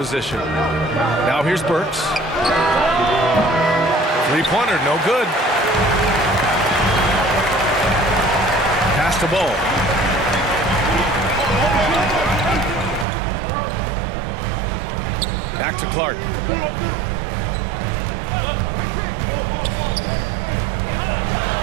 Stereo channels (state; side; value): drops out; left; at 13.1 s